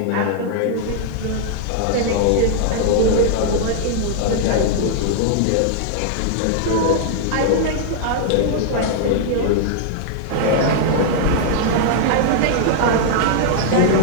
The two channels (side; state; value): both; different; correlation -0.01